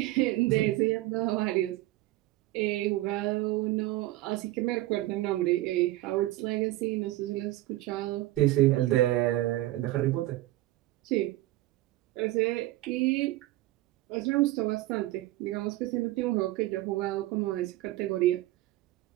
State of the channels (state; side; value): quieter; left; 16.8 dB